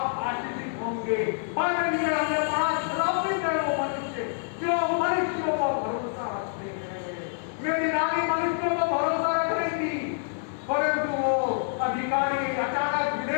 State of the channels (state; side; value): silent; right; digital silence